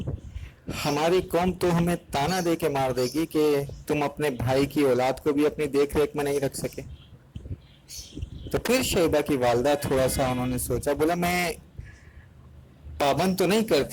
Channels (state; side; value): identical; both; correlation 1.00